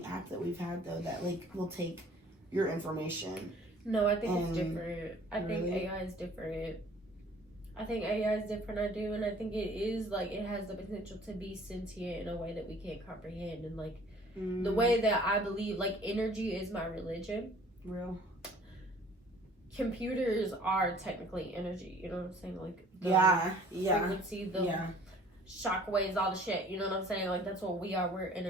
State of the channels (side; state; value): both; normal; correlation 0.52